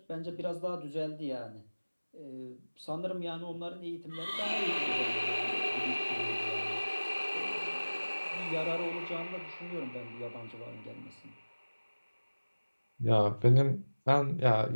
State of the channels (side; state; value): both; inverted; correlation -1.00